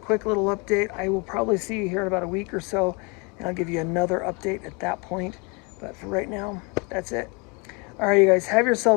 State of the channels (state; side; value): quieter; right; 30.9 dB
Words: little update. I will probably see you here in about a week or so, and I'll give you another update at that point. But for right now, that's it. All right, you guys, have